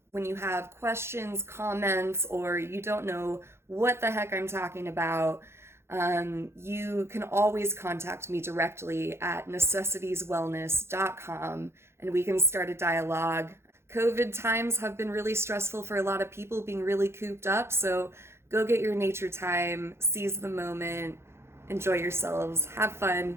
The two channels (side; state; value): left; late; 0.12 ms